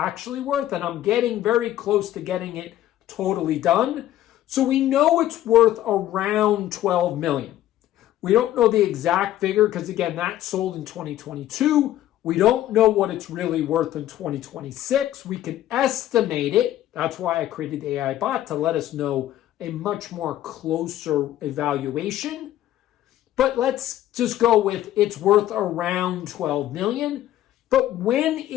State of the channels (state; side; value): quieter; right; 13.2 dB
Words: worth, and I'm getting very close to getting it totally done. So we know it's worth around 12 million. We don't know the exact figure because, again, that sold in 2022. We don't know what it's really worth in 2026. We can estimate it. That's why I created the AI bot, to let us know a much more closer evaluation. But let's just go with it's worth around 12 million. But when